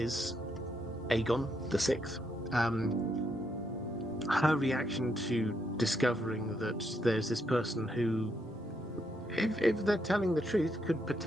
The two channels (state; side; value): normal; both; correlation 0.77